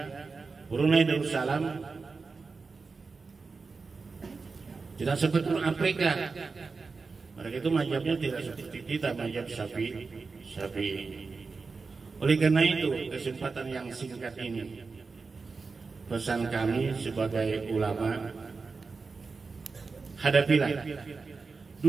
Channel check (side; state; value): left; quieter; 4.4 dB